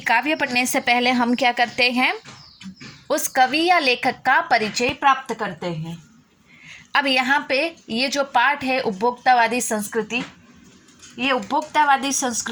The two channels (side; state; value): both; identical; correlation 1.00